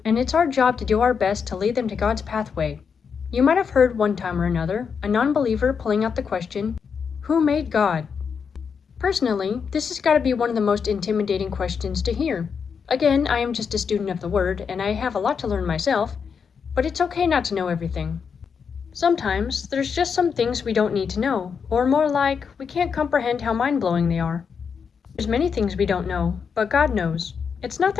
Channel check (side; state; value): right; quieter; 6.3 dB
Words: and it's our job to do our best to lead them to God's pathway. You might have heard one time or another a non-believer pulling out the question, who made God? Personally, this has got to be one of the most intimidating questions to hear. Again, I am just a student of the Word, and I have a lot to learn myself, but it's okay not to know everything. Sometimes, there's just some things we don't need to know, or more like, we can't comprehend how mind-blowing they are. There's many things we don't know, but God knows. It's not